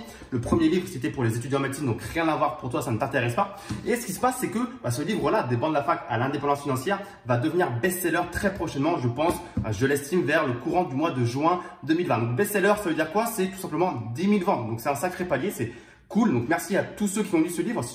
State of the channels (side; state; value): both; identical; correlation 1.00